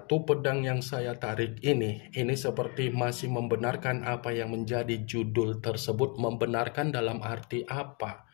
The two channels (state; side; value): quieter; right; 34.4 dB